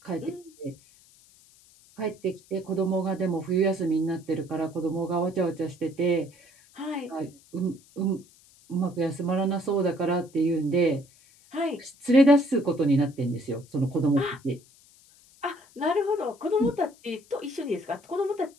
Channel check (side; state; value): left; noise; hiss, 27 dB below the sound